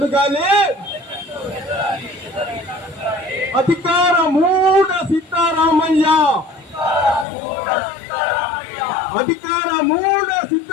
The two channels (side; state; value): right; drops out; at 7.2 s